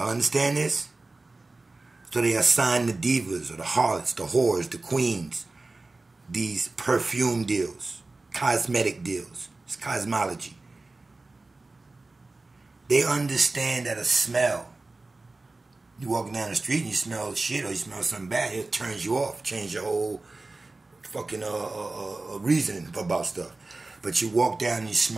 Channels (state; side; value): quieter; left; 3.3 dB